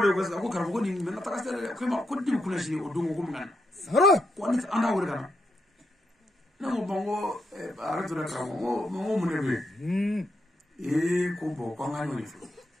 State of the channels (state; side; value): normal; both; correlation 0.81